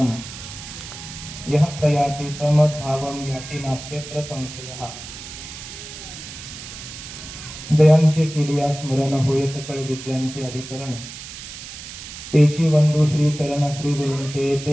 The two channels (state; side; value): noise; right; hiss, 12 dB below the sound